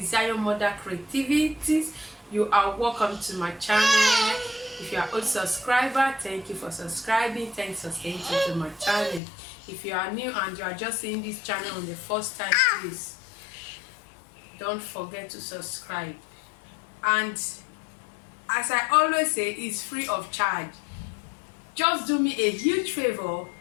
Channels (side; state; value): right; drops out; at 9.2 s